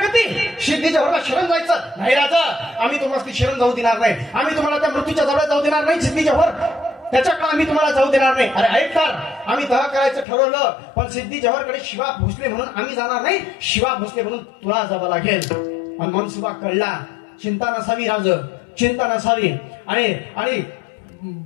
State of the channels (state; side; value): drops out; right; at 10.2 s